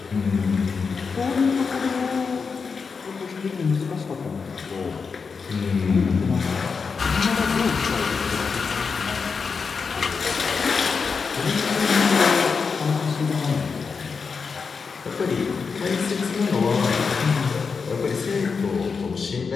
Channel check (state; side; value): quieter; right; 5.3 dB